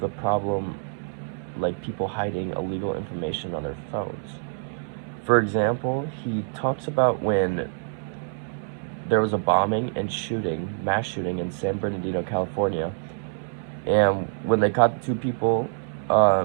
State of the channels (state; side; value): silent; left; 61 dB below the other